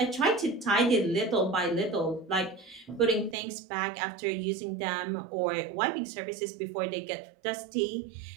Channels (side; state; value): left; drops out; at 3.4 s